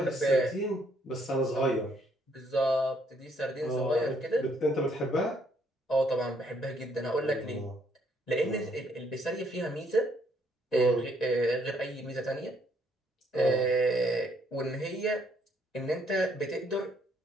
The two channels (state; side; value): normal; both; correlation 0.69